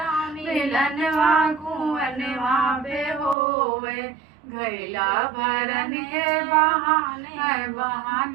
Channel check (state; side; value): drops out; left; at 3.4 s